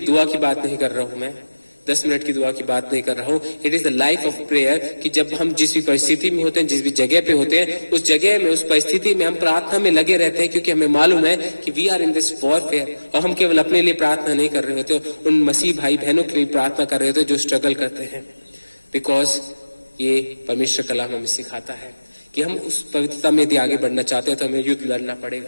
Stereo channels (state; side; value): inverted; both; correlation -1.00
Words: की बात नहीं कर रहा हूं मैं, 10 मिनट की दुआ की बात नहीं कर रहा हूं। It is the life of prayer, कि जब हम जिस भी परिस्थिति में होते हैं, जिस भी जगह पे होते हैं, उस जगह में, उस परिस्थिति में हम प्रार्थना में लगे रहते हैं, क्योंकि हमें मालूम है कि we are in this warfare. और हम केवल अपने लिए प्रार्थना नहीं कर रहे होते, उन मसीह भाई बहनों के लिए प्रार्थना कर रहे होते जो स्ट्रगल करते हैं। बिकॉज ये परमेश्वर कलाम हमें सिखाता है कि हम उस पवित्रता में यदि आगे बढ़ना चाहते हैं, तो हमें युद्ध लड़ना